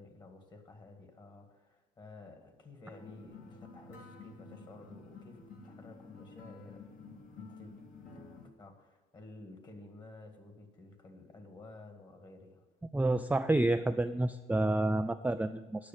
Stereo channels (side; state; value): both; normal; correlation 0.93